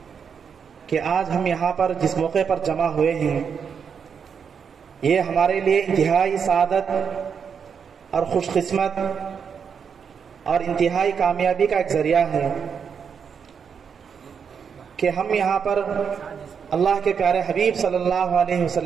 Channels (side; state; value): left; quieter; 6.8 dB